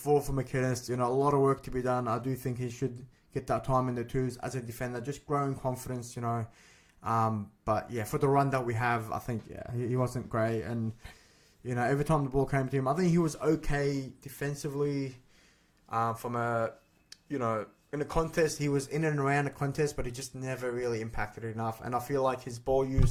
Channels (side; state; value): both; identical; correlation 1.00